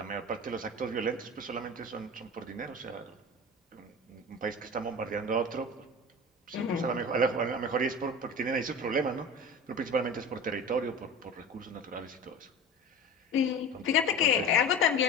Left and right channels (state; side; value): normal; both; correlation 0.32